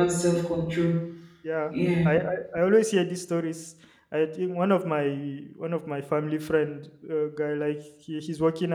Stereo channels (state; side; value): identical; both; correlation 1.00